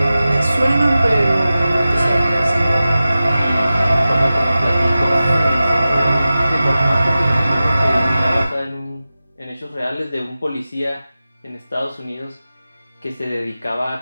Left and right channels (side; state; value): both; inverted; correlation -0.95